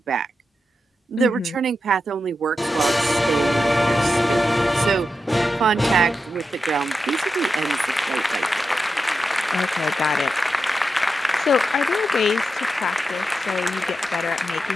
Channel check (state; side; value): normal; both; correlation 0.89